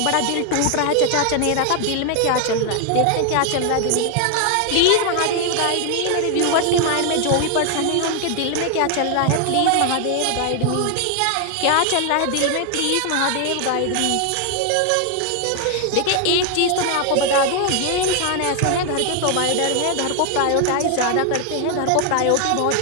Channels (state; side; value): different; both; correlation 0.00